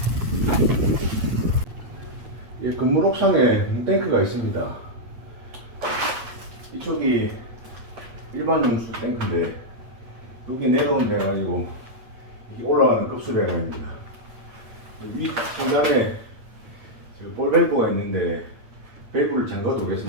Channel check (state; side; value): late; left; 8.7 ms